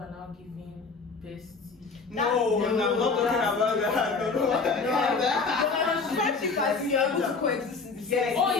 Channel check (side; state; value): right; quieter; 4.6 dB